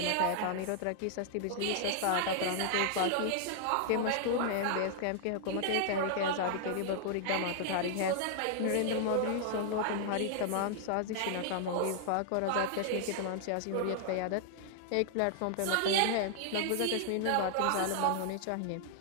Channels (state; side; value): different; both; correlation 0.00